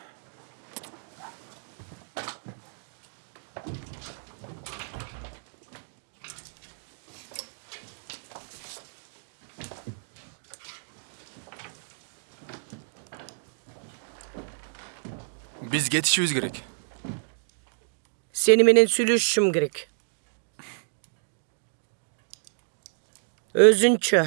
Биз кетишибиз керек. Seni менен сүйлөшүшүм керек. Өзүнчө.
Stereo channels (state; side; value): silent; left; digital silence